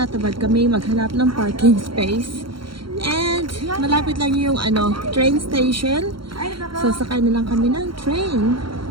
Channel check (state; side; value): late; left; 0.73 ms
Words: kami maghanap ng parking space and malapit lang yung train station, so sakay na lang kami ng train.